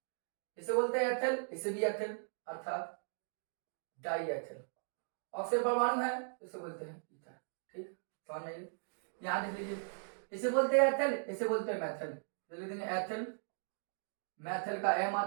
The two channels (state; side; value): silent; left; digital silence